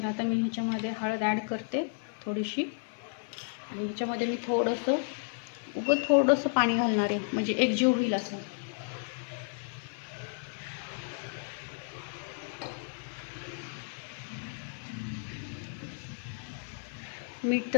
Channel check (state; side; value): silent; right; 56 dB below the other